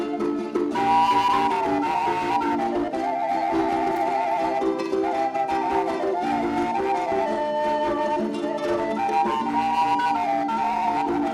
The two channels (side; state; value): both; identical; correlation 1.00